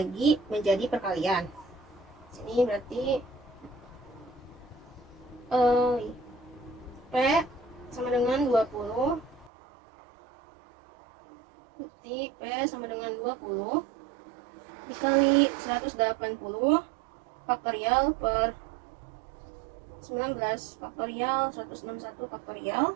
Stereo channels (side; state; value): left; drops out; at 9.5 s